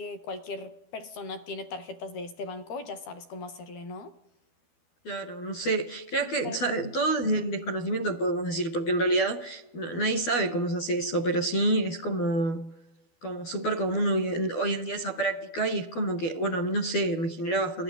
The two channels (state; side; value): late; right; 12 ms